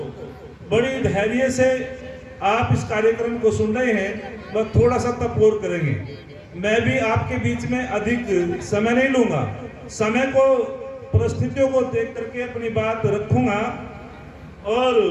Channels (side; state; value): both; identical; correlation 1.00